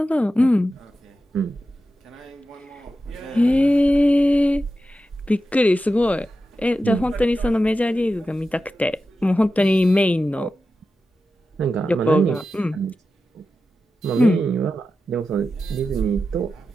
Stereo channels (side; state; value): both; normal; correlation 0.91